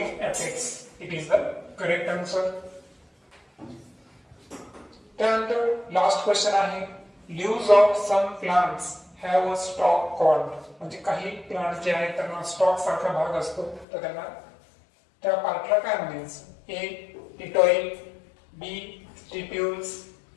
apex. It is the correct answer. त्यानंतर लास्ट क्वेश्चन आहे leaves of some plants have a stalk called. म्हणजे काही प्लांट जे आहेत त्यांना स्टॉक सारखा भाग असतो तर त्यांना त्या पार्टला काय म्हणायचं? A petiole, B stipules,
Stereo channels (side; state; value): right; drops out; at 13.9 s